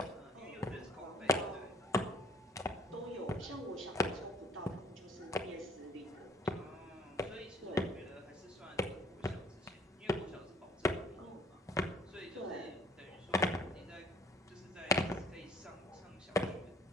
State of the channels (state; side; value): normal; both; correlation 0.58